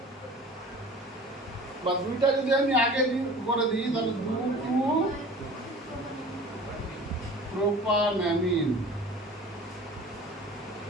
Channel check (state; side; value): normal; both; correlation 0.42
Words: বা দুইটা যদি আমি আগে করে দিই তাহলে 2 2 প্রোপানঅ্যামিন,